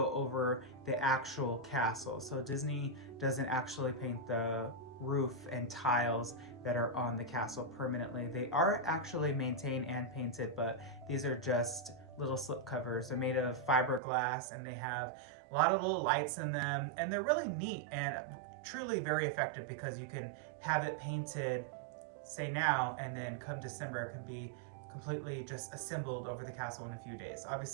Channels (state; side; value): drops out; left; at 14.0 s